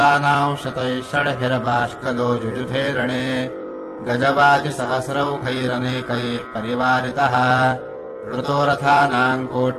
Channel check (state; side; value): identical; both; correlation 1.00